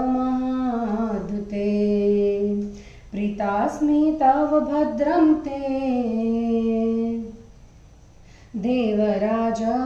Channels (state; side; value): identical; both; correlation 1.00